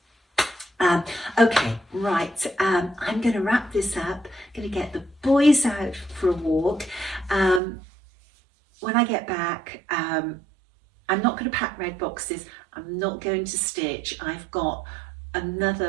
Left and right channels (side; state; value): left; drops out; at 7.6 s